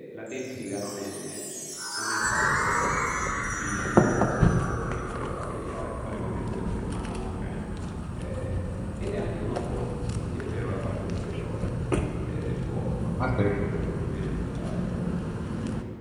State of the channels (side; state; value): both; identical; correlation 1.00